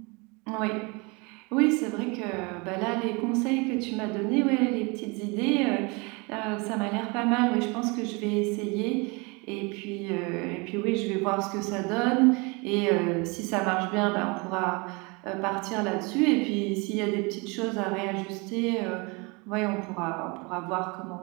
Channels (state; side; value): quieter; left; 28.6 dB